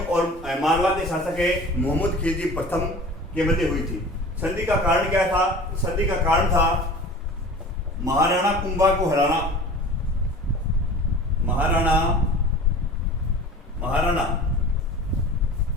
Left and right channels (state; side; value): normal; both; correlation 0.40